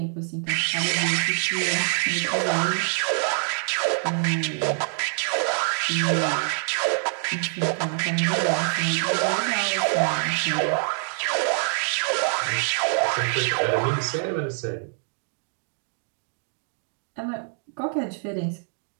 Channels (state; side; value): silent; left; 55 dB below the other